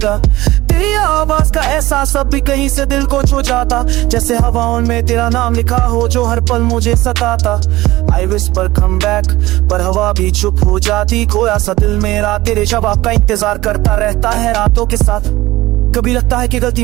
तेरी आवाज का एहसास अब भी कहीं से दिल को छू जाता, जैसे हवाओं में तेरा नाम लिखा हो जो हर पल मुझे सताता। I whisper come back पर हवा भी चुप हो जाती। खोया सा दिल मेरा तेरे जवाब का इंतजार करता रहता है रातों के साथ। कभी लगता है कि गलती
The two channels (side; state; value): left; quieter; 18.1 dB